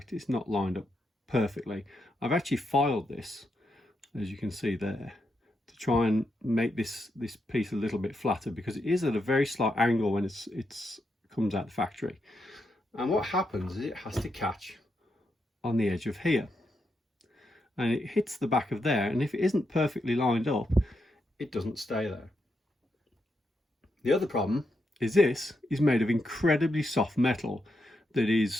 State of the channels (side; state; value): both; normal; correlation 0.83